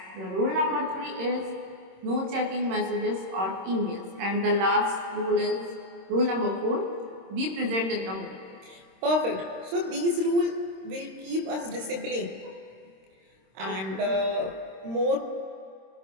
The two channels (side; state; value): left; late; 26 ms